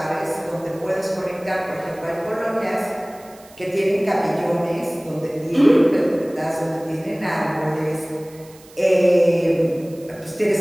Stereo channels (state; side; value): noise; right; hiss, 25 dB below the sound